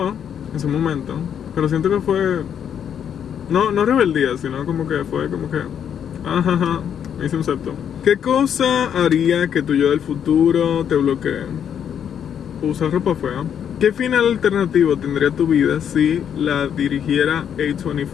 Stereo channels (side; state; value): right; quieter; 8.6 dB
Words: en su momento, pero siento que fue... No rebeldía, sino como que fue como que... me hice un septum. ¿Qué cosa haría que tu yo del futuro te bloquee? Usar ropa fea. ¿Qué final alternativo tendría tu vida si la dirigiera